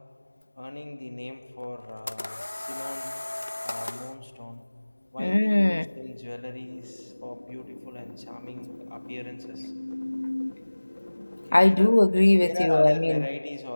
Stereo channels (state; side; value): inverted; both; correlation -1.00